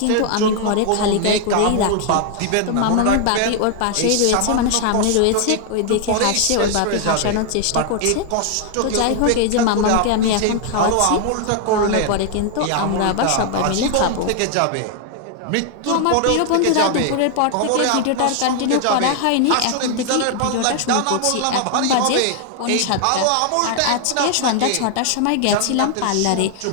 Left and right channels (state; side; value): different; both; correlation 0.00